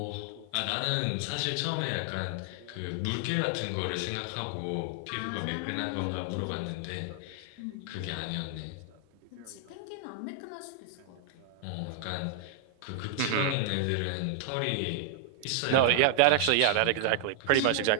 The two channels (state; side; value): different; both; correlation 0.00